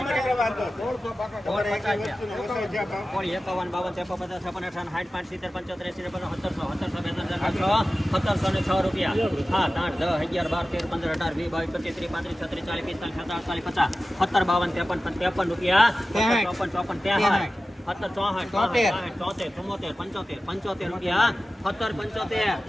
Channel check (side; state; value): both; normal; correlation 0.95